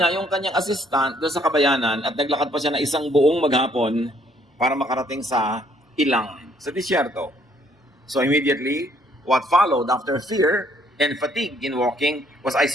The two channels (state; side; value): normal; both; correlation 0.65